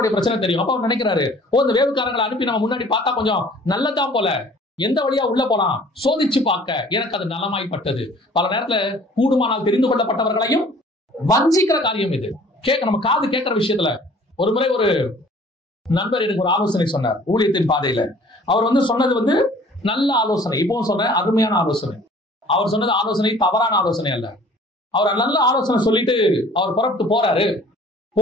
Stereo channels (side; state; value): both; normal; correlation 0.52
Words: பிரச்சனை தெரியும். அப்ப அவர் நினைக்கிறாரு, இந்த வேவுக்காரங்களை அனுப்பி நம்ம முன்னாடி பார்த்தா கொஞ்சம் நல்லதான் போல, எந்த வழியா உள்ள போலாம் சோதிச்சு பார்க்க எனக்கு அது நலமாய்ப்பட்டது. பல நேரத்துல கூடுமானால் தெரிந்து கொள்ளப்பட்டவர்களையும் வஞ்சிக்கிற காரியம் இது. நம்ம காது கேட்கிற விஷயத்துல ஒரு முறை ஒரு நண்பர் எனக்கு ஒரு ஆலோசனை சொன்னார் ஊழியத்தின் பாதையில. அவர் சொன்னது நல்ல ஆலோசனை, இப்பவும் சொல்றேன், அருமையான ஆலோசனை. அவர் சொன்னது ஆலோசனை தவறான ஆலோசனை அல்ல. அவர் நல்ல ஆலோசனை சொல்லிட்டு அவர் புறப்பட்டு போறாரு.